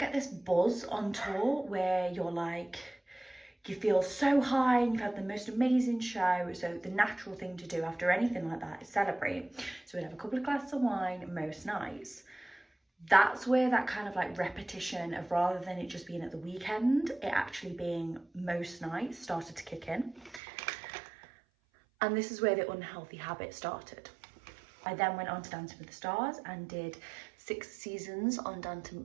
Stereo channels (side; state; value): left; drops out; at 20.4 s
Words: this buzz on tour where you're like, you feel so high and you've had the most amazing show. So the natural thing to do after anything like that is celebrate. So we'd have a couple of glasses of wine most nights. That's where that kind of like repetition of, rather than it just being at the weekend, it actually being most nights, started to kick in. And this is where the unhealthy habit started. I then went on to Dancing with the Stars and did 6 seasons on